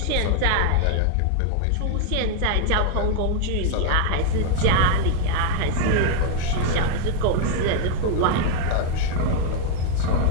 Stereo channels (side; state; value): both; different; correlation 0.00